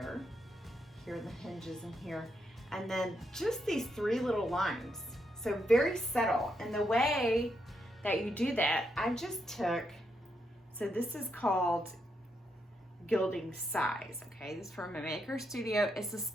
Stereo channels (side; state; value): both; normal; correlation 0.80